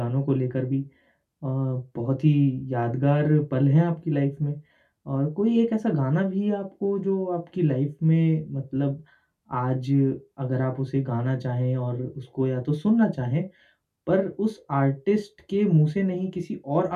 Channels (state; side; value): identical; both; correlation 1.00